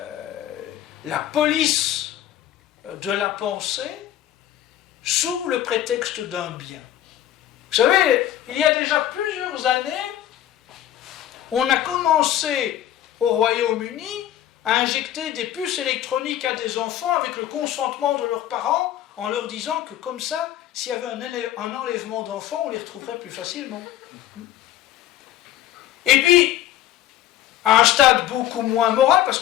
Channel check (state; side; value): quieter; right; 12.4 dB